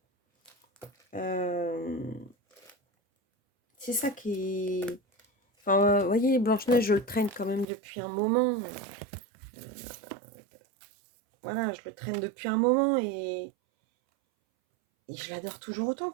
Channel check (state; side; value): drops out; left; at 7.7 s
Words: C'est ça qui est... Enfin, vous voyez, Blanche-Neige, je le traîne quand même depuis un moment. Voilà, je le traîne depuis un moment et je l'adore toujours autant,